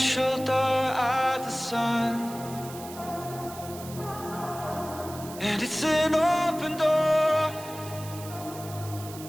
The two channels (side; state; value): right; noise; hiss, 15 dB below the sound